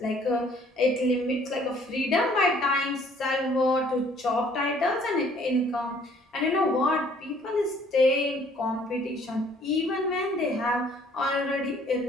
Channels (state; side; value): normal; both; correlation 0.59